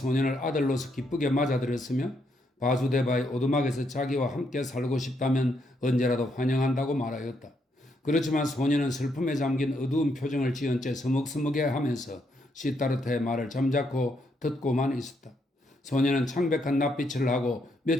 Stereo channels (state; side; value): normal; both; correlation 0.76